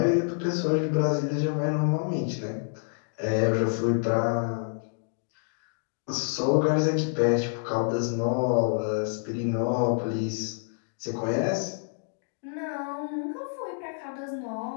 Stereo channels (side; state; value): right; silent; digital silence